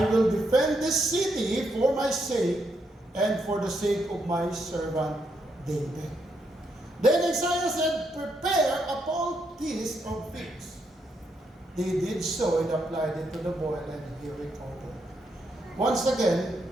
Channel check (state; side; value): normal; both; correlation 0.78